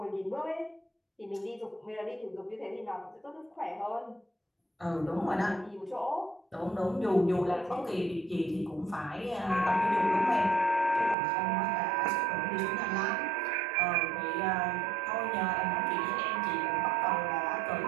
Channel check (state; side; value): drops out; left; at 11.2 s